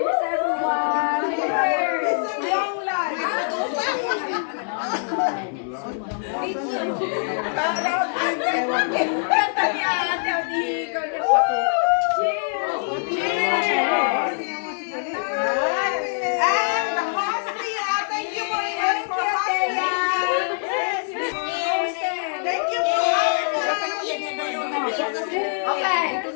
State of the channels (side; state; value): right; silent; digital silence